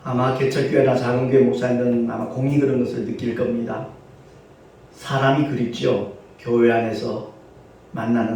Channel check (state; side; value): identical; both; correlation 1.00